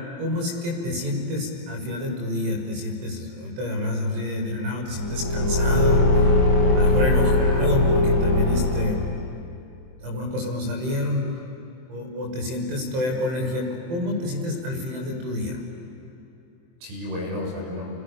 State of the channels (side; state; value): left; late; 23 ms